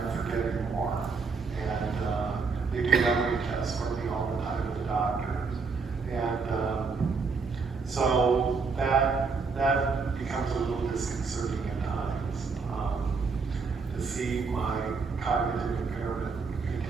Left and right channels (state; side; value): quieter; left; 4.7 dB